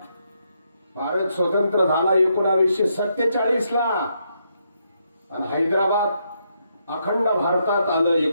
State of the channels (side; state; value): both; inverted; correlation -0.78